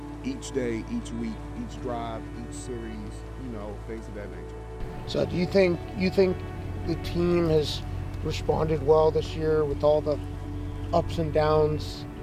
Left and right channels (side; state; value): both; identical; correlation 1.00